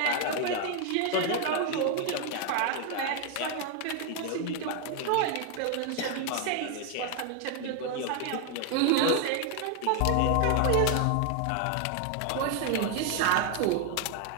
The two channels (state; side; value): different; both; correlation 0.00